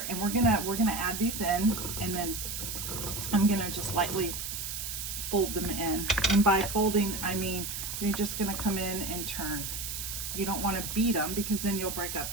and we're gonna add these in, and then I'm gonna just lightly fold them in. And by folding, I mean you're just gonna come in and turn. You don't want to beat them because then you'll break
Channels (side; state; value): right; noise; hiss, 5 dB below the sound